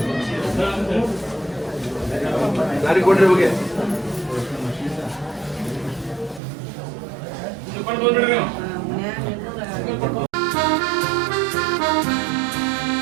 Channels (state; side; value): drops out; left; at 6.4 s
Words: ದಾರಿ ಕೊಡ್ರಿ ಹೋಗಿ